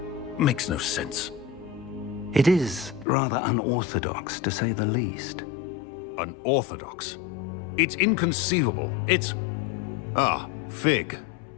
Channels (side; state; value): right; drops out; at 3.1 s